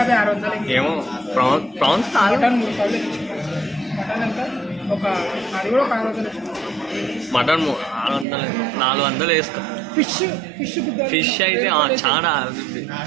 600 ఏమో ప్రాన్స్ మటన్ 3000 మటన్ ఎంత ఒక అది కూడా 600 మటన్ 400 వేస్తాం ఫిష్ అయితే చాలా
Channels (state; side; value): drops out; left; at 8.2 s